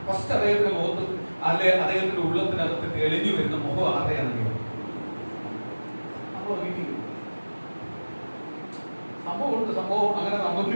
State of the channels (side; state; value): both; inverted; correlation -1.00